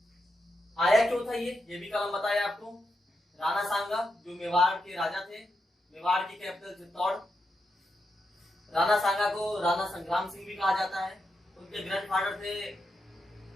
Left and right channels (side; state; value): both; normal; correlation 0.85